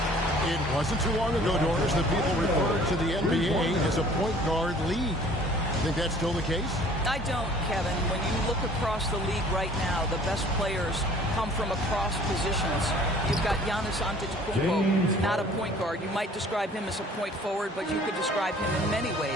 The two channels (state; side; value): normal; both; correlation 0.52